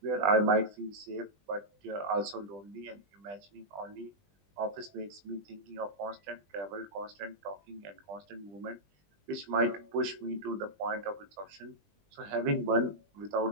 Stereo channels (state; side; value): late; left; 20 ms